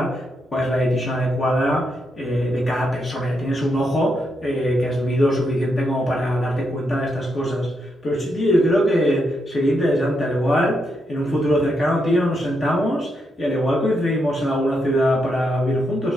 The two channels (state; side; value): normal; both; correlation 0.81